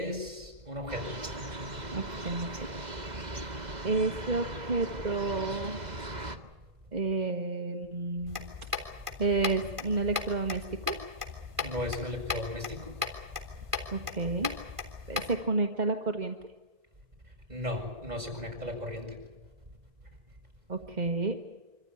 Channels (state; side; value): late; left; 1.5 ms